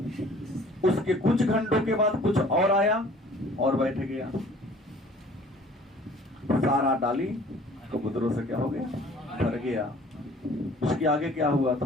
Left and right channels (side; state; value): both; normal; correlation 0.51